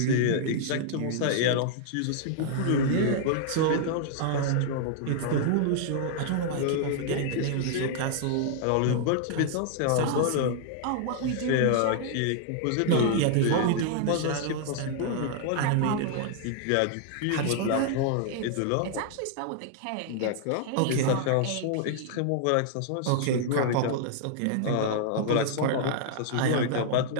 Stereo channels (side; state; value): both; different; correlation -0.01